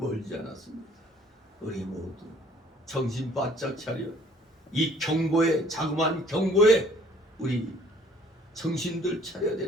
않았습니다. 우리 모두 정신 바짝 차려 이 경고에, 자그마한 경고에 우리 정신들 차려야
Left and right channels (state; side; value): normal; both; correlation 0.57